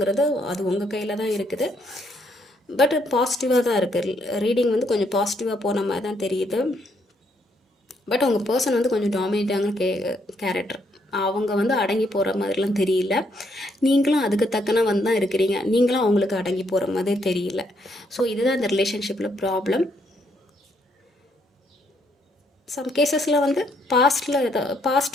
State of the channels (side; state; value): both; normal; correlation 0.73